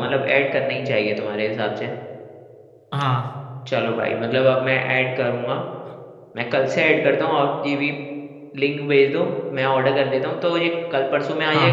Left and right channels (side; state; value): both; identical; correlation 1.00